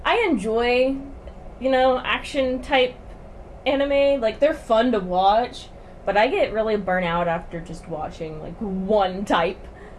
I enjoy, action type anime. Like, they're fun to watch, but I get really burnt out after just watching like one type,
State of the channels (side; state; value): both; identical; correlation 1.00